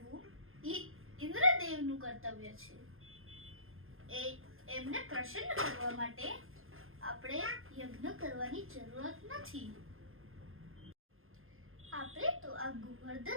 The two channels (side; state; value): left; late; 0.60 ms